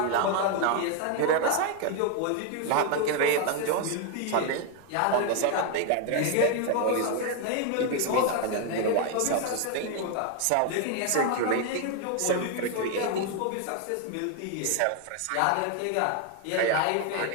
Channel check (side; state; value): both; different; correlation 0.01